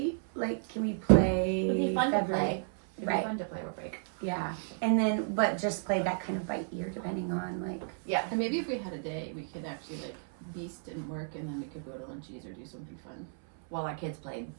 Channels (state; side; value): silent; left; 56 dB below the other